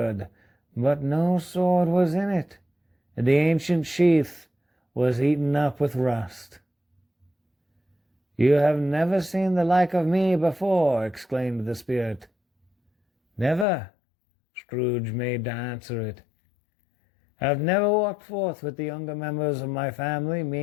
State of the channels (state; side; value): drops out; right; at 13.7 s